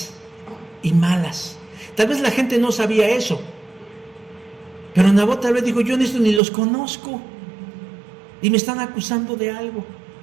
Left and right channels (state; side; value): drops out; left; at 6.4 s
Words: y malas. Tal vez la gente no sabía eso, pero Nabot tal vez dijo, yo en esto ni los conozco y me están acusando de algo.